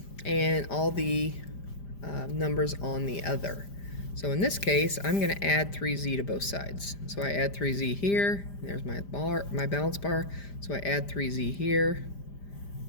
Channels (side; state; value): right; late; 5.0 ms